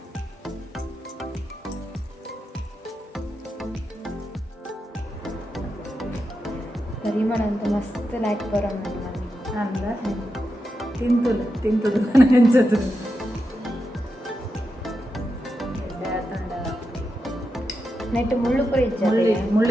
ಪರಿಮಳ ಅಂತ ಮಸ್ತ್ ಲೈಕ್ ಬರೋ ಅಂದ ತಿಂತದು ನೆಂಚದು ನೆಟ್ಟು ಮುಳ್ಳು ಪುರಿ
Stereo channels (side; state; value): both; normal; correlation 0.87